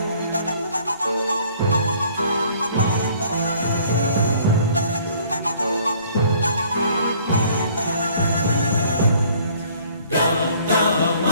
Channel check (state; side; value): inverted; both; correlation -0.57